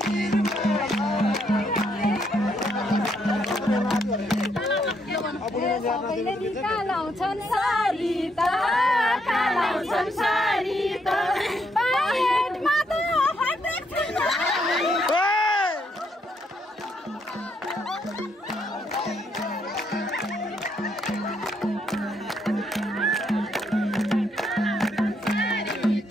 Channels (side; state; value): both; normal; correlation 0.74